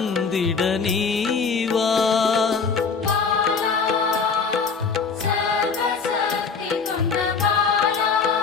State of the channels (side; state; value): right; quieter; 5.3 dB